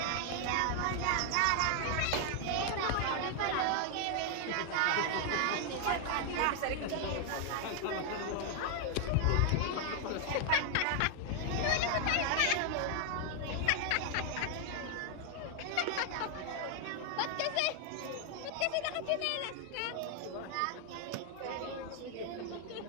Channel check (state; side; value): different; both; correlation 0.00